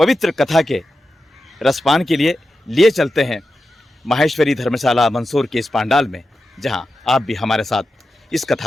कथा के रसपान के लिए चलते हैं माहेश्वरी धर्मशाला मंदसौर के इस पांडाल में, जहां आप भी हमारे साथ इस कथा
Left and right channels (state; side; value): normal; both; correlation 0.91